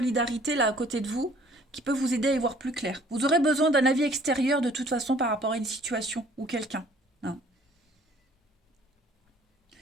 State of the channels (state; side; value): normal; both; correlation 0.56